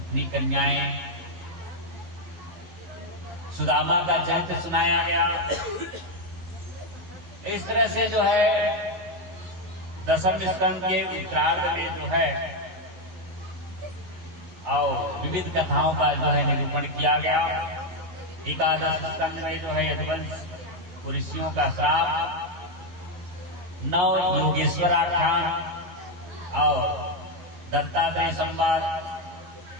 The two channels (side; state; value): left; late; 11 ms